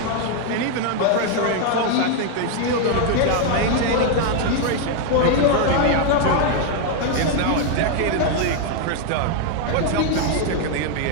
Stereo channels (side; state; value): both; different; correlation 0.00